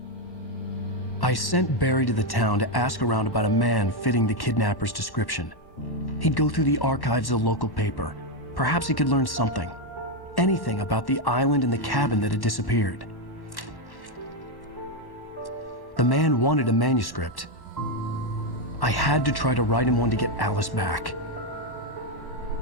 I sent Barry to the town to ask around about a man fitting the kidnapper's description. He'd go through the archives of the local paper. Perhaps he could learn something. Anything about the island and the cabin that had disappeared. The man wanted a manuscript. I had to try to write him one to get Alice back.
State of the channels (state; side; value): late; right; 1.1 ms